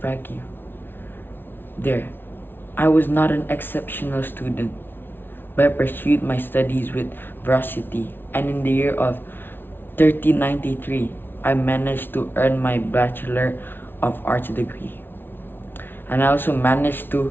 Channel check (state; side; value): late; right; 0.10 ms